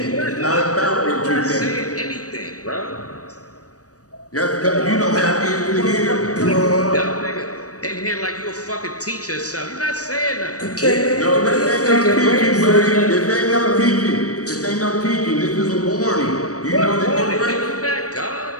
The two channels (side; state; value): right; late; 0.66 ms